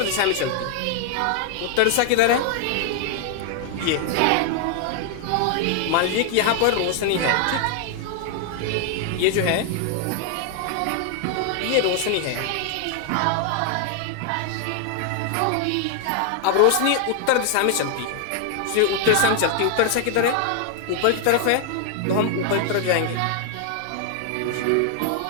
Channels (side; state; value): both; different; correlation 0.00